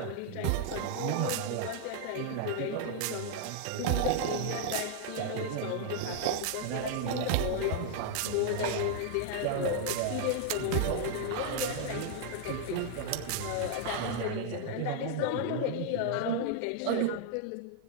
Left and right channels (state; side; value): different; both; correlation 0.00